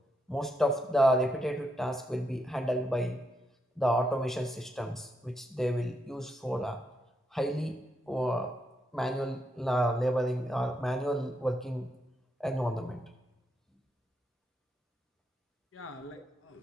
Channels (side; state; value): both; normal; correlation 0.81